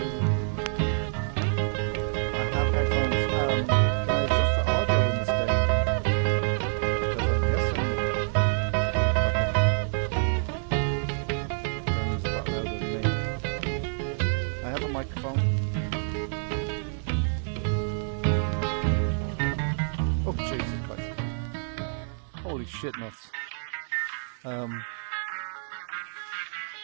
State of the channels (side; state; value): left; silent; digital silence